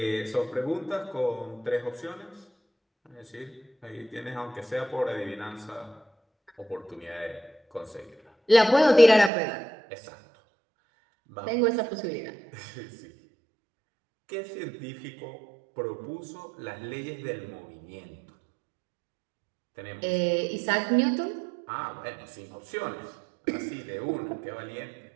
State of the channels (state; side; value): drops out; left; at 9.3 s